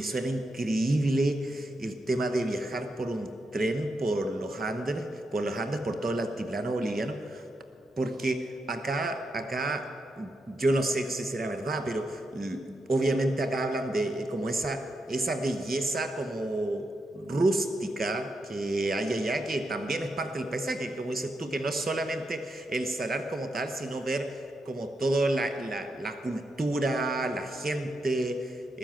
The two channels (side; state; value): both; normal; correlation 0.84